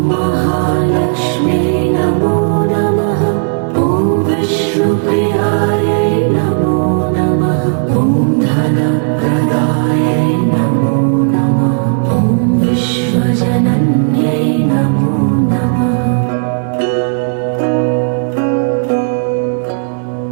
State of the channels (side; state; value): left; silent; digital silence